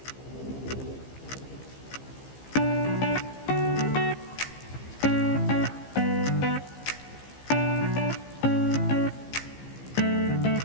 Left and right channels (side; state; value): right; late; 15 ms